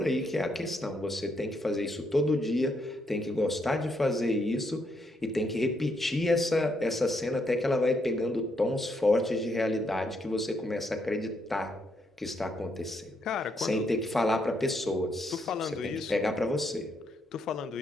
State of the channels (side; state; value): both; normal; correlation 0.76